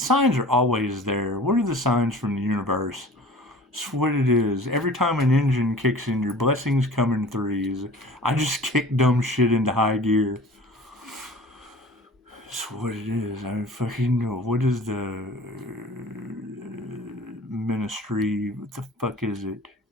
are always there. What are the signs from the universe? It's what it is. Every time an engine kicks in, your blessings come in threes. I just kick dumb shit into high gear. It's what it is. I fucking know. What is the ministry? What the fuck is it?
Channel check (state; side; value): normal; both; correlation 0.43